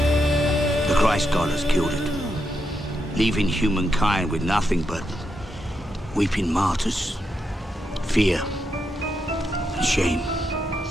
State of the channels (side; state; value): both; normal; correlation 0.83